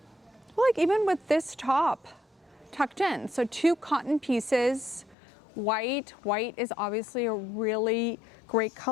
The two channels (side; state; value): right; drops out; at 5.2 s